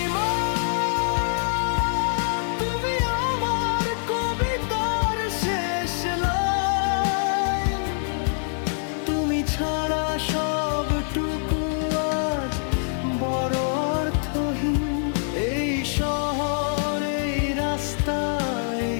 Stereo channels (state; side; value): silent; right; 62 dB below the other